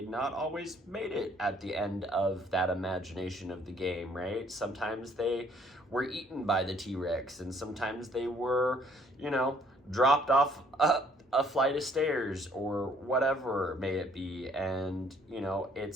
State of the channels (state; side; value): normal; both; correlation 0.62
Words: not always made it at the end of that imagination of the game, right? Sometimes they were eaten by the T-Rex, and sometimes they were, dropped off a flight of stairs or whatever may it be. And,